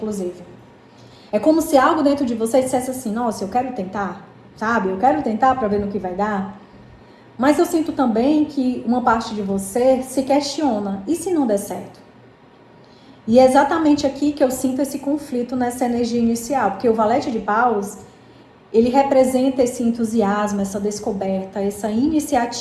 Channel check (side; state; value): both; identical; correlation 1.00